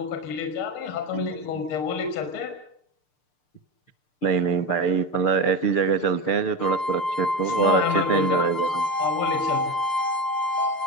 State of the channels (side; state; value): right; late; 6.7 ms